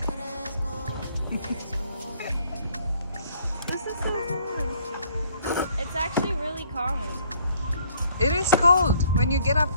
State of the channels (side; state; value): both; inverted; correlation -0.62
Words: This is so fun. It's actually really calming. It is cold when you get up